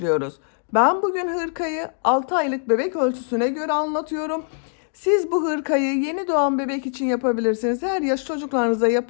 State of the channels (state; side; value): silent; right; 64 dB below the other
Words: Ben bugün hırkayı 6 aylık bebek ölçüsüne göre anlatıyorum. Siz bu hırkayı yeni doğan bebek için yapabilirsiniz. Her yaş çocuklarınıza